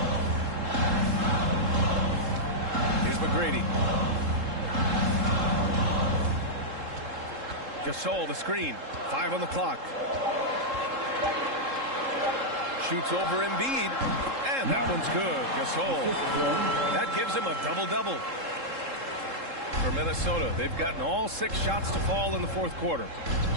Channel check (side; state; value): left; late; 3.7 ms